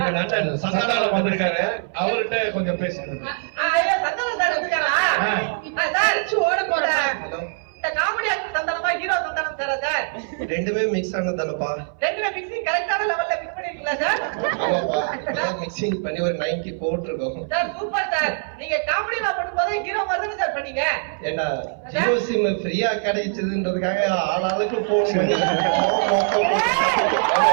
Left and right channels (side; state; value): left; silent; 60 dB below the other